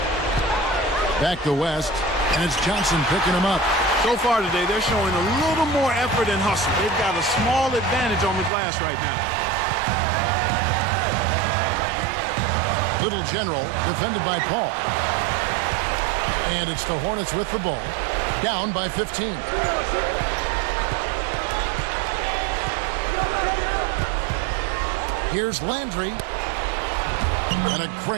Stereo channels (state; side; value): drops out; left; at 8.5 s